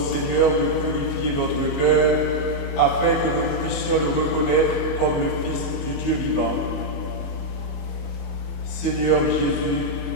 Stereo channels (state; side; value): late; right; 22 ms